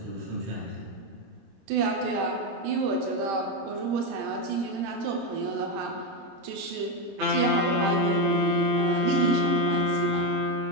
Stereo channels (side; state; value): left; late; 26 ms